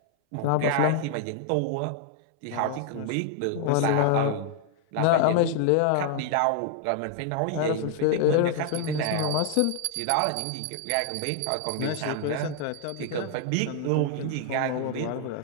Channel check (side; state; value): both; different; correlation 0.00